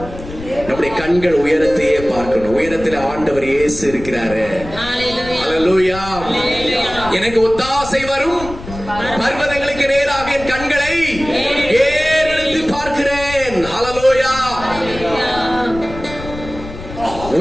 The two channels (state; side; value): noise; left; rumble, 12 dB below the sound